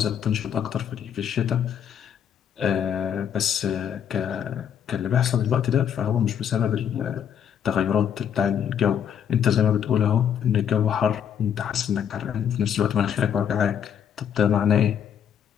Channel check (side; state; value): right; quieter; 8.7 dB